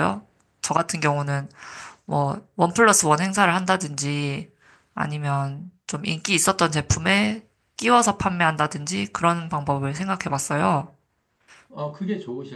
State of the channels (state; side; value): identical; both; correlation 1.00